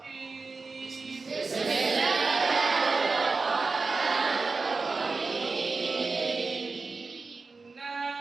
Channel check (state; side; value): quieter; left; 4.1 dB